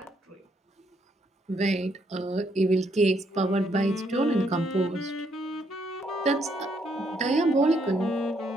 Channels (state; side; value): normal; both; correlation 0.72